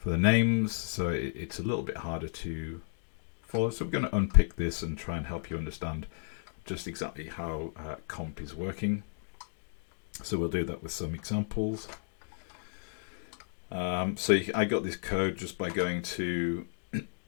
names, so it's a little bit harder to follow. So we're going to unpick this and try and help you understand just exactly how comp is working. So we'll do that with some examples. So I got this code just by going to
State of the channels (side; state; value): right; silent; digital silence